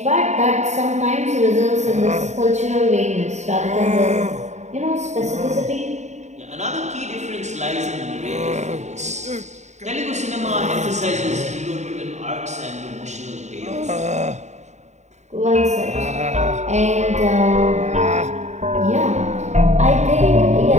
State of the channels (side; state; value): left; late; 0.33 ms